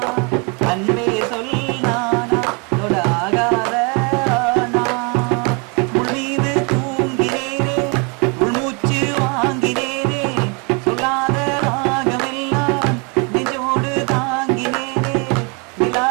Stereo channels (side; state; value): left; quieter; 32.9 dB